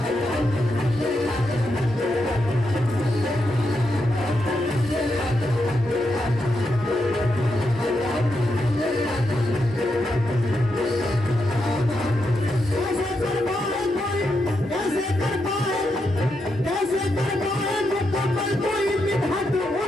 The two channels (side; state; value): both; normal; correlation 0.84